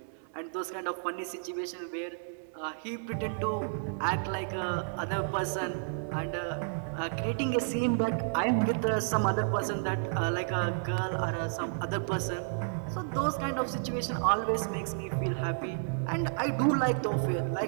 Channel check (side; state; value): left; silent; 57 dB below the other